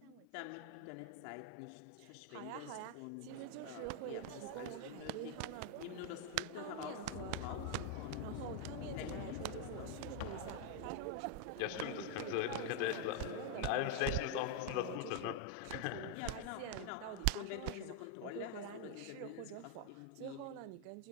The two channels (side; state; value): both; different; correlation 0.01